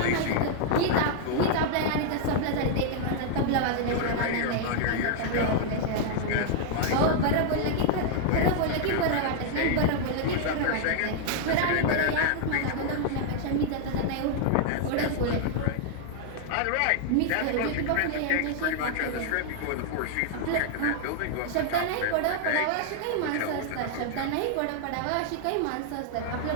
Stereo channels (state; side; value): different; both; correlation 0.00